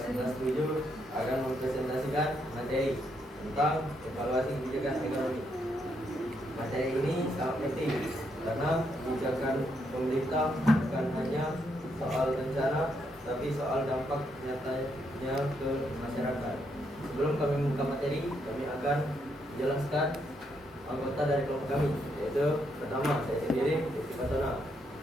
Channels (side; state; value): both; normal; correlation 0.77